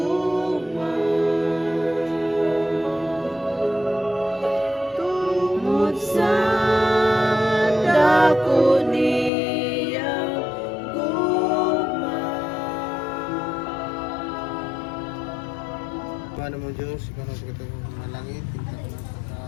tungod sa dako niyang gugma. Ano mo Diyos, ikaw na sa katang malangit,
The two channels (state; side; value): drops out; right; at 9.3 s